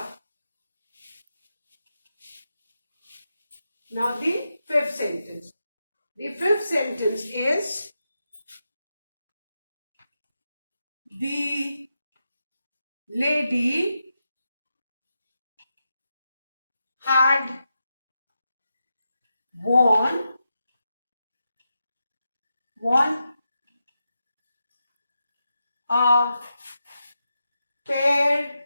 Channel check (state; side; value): inverted; both; correlation -0.88